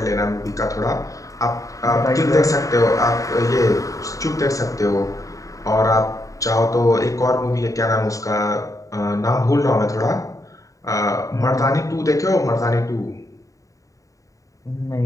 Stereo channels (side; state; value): right; late; 0.16 ms